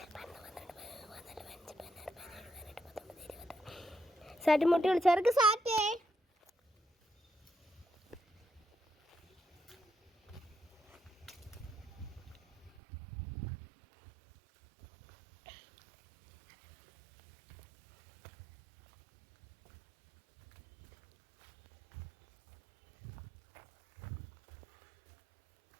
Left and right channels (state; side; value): drops out; left; at 12.8 s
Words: സാറ്റ് മുട്ടി വിളിച്ചവർക്ക് സാറ്റേ.